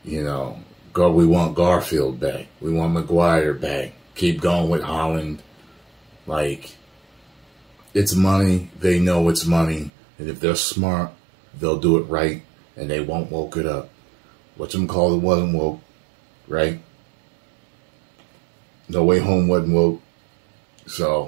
want Garfield back. We want Maguire back. Keep going with Holland. Like, it's money. They know it's money. And if they're smart, they'll do it right. And they won't woke it up. Whatchamacallit wasn't woke, right? No Way Home wasn't woke.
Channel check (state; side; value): drops out; left; at 9.9 s